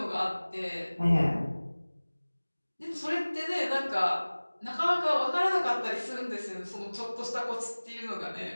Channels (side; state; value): both; inverted; correlation -1.00